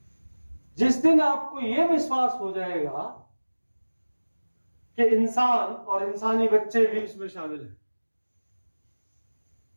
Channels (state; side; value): inverted; both; correlation -1.00